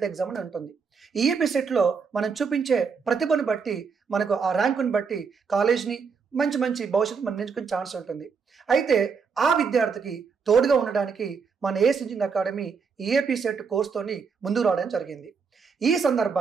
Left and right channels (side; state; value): left; quieter; 5.6 dB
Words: ఎగ్జామ్ అని ఉంటుంది. ఈఏపీ సెట్లో మనం చూపించే ప్రతిభను బట్టి, మనకు ఆ ర్యాంకుని బట్టి కాలేజ్ని మంచి భవిష్యత్తు మనం నేర్చుకునే ఛాన్స్ ఉంటుంది. అయితే ఆ విద్యార్థికి తోడుగా ఉండడానికి మన ఏస్ ఇంజినియరింగ్ అకాడమీ ఈఏపీ సెట్ కోర్స్తోని ముందుకు రావడం జరిగింది. ఈ